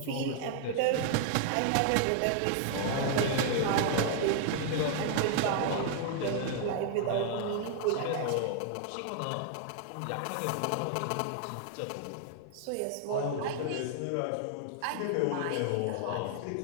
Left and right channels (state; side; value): different; both; correlation 0.00